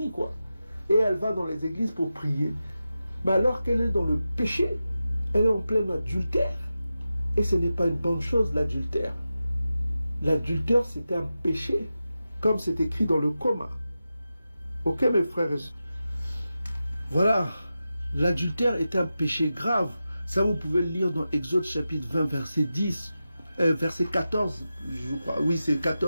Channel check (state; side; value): inverted; both; correlation -0.92